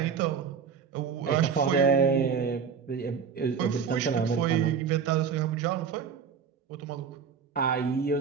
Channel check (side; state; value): left; quieter; 6.6 dB